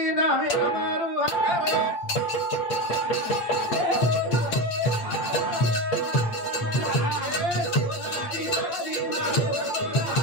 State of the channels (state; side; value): late; right; 8.5 ms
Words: नावे अमरू हरे